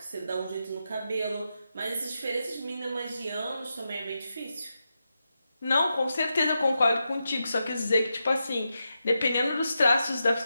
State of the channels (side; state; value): both; inverted; correlation -0.88